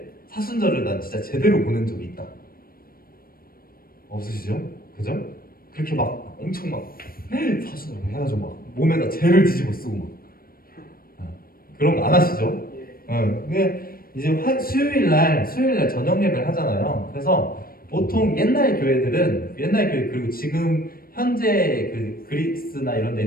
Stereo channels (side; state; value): right; late; 0.43 ms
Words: 사순절을 난 진짜 제대로 보낸 적이 있다. 없으시죠? 그죠? 그렇게 막 엄청 사순절 해가지고 막 몸에다 재를 뒤집어 쓰고 막 그런 거 안 하시죠? 근데 이제 수요일 날 저녁 예배를 하잖아요. 그래서 보통 옛날 교회 그리고 지금 현재 그 그리스나 이런 데